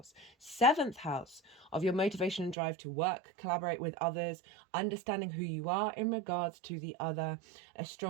7th house of your motivation and drive to work, collaborate with others, understanding who you are in regards to the other, a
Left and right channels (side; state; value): left; drops out; at 2.6 s